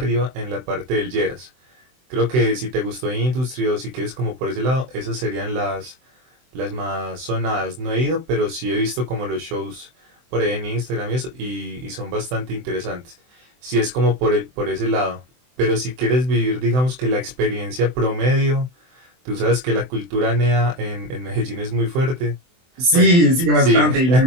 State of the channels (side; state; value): left; late; 23 ms